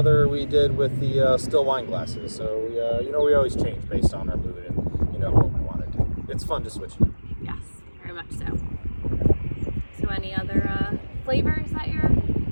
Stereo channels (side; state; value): both; inverted; correlation -1.00